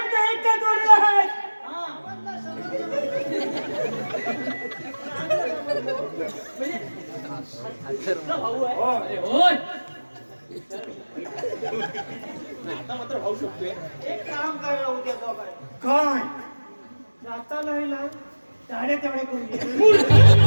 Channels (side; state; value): both; inverted; correlation -1.00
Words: इतका जोडला आहे. तुमचा भाऊ आहे हो. अरे होय एक काम करा उद्या दोघांनी. काय? जाता नाही ना साडे तेवढे करून घे.